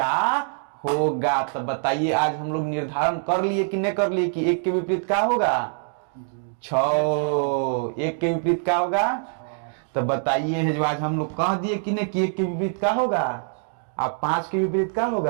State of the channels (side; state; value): left; silent; digital silence